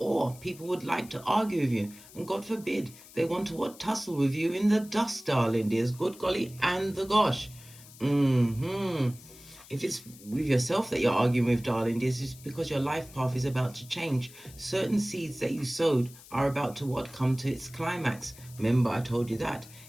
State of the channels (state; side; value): noise; left; hiss, 20 dB below the sound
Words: people would like to argue with you. And God forbid, they want to tussle with you in the dust, darling dears. Good golly and the gosh. If it's with yourself that you're arguing with, darling dears, it's because your life path is about to change. Certain seeds that you sowed are about to come to its climax. Remember, I told you that.